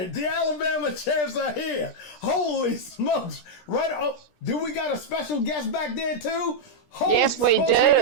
The Alabama champs are here. Holy smokes. Right up. Do we got a special guest back there too? Holy Yes, we smokes, do. We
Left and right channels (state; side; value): late; right; 17 ms